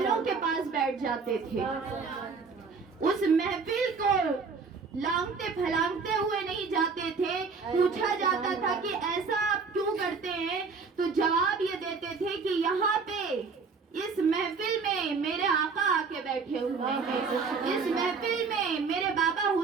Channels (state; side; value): quieter; left; 4.9 dB